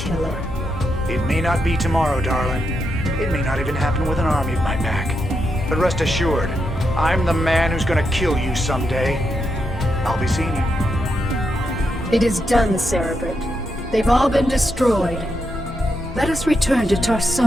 It may not be tomorrow, darling. It may not even happen with an army at my back. But rest assured, I'm the man who's gonna kill you someday. I'll be seeing you. It is done, Cerebrit. They've all been destroyed. Let us return to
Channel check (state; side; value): normal; both; correlation 0.83